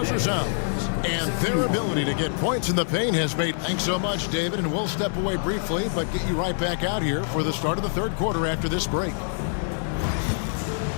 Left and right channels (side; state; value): right; silent; digital silence